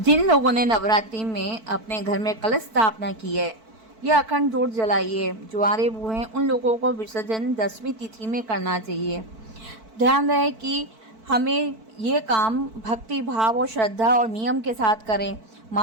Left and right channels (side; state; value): left; late; 4.5 ms